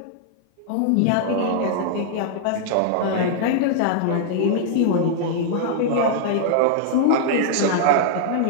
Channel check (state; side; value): different; both; correlation -0.01